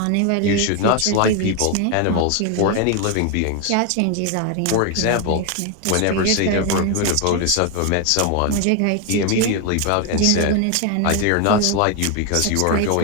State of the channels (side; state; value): both; different; correlation 0.01